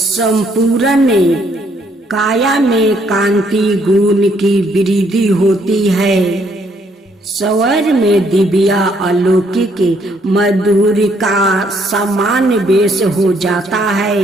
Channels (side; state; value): both; normal; correlation 0.69